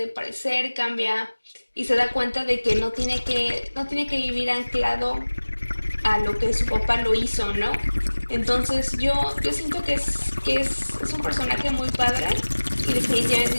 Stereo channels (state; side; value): inverted; both; correlation -1.00